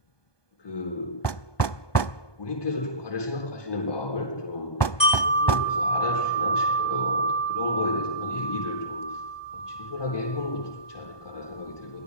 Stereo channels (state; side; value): late; right; 1.2 ms